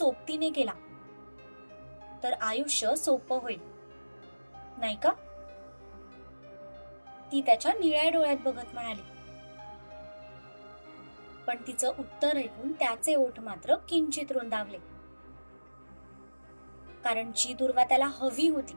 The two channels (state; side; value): inverted; both; correlation -1.00